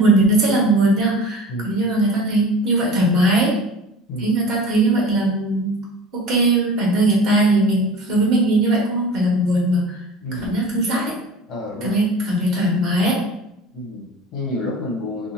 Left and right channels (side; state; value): both; normal; correlation 0.40